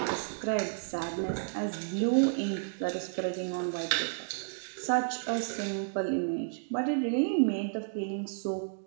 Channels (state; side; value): silent; left; digital silence